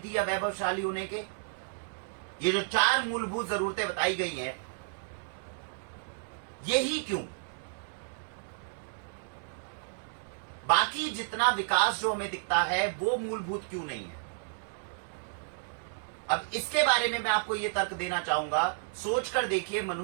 या वैभवशाली होने के? ये जो 4 मूलभूत जरूरतें बताई गई हैं, यही क्यों? बाकी जितना विकास जो हमें दिखता है वो मूलभूत क्यों नहीं है? अब इसके बारे में मैं आपको यह तर्क देना चाहूंगा। सोचकर देखिए,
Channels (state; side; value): silent; left; digital silence